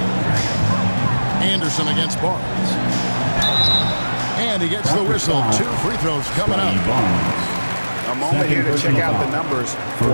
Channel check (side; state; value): both; inverted; correlation -1.00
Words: Anderson against Barnes. And he gets the whistle. 2 free throws coming up. A moment here to check out the numbers for